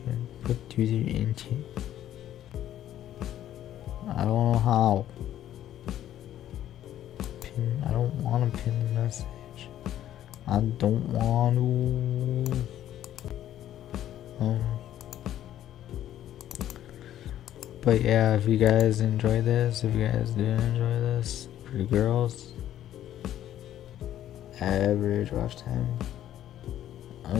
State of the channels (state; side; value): quieter; right; 11.9 dB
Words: put user into. I don't know how. I don't want to pin the message. I don't want to. But yeah, if you guys enjoy this, if you guys didn't enjoy this, for you girls, average watch time.